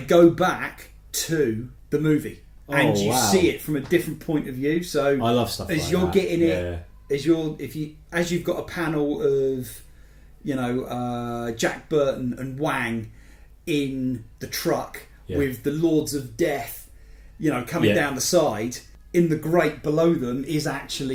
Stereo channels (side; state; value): both; identical; correlation 1.00